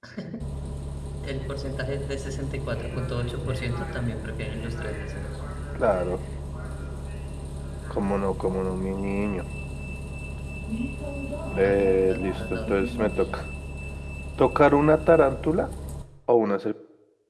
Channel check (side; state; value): both; identical; correlation 1.00